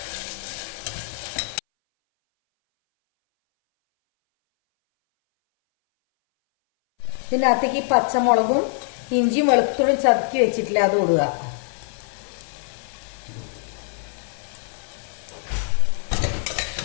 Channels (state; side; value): silent; right; 60 dB below the other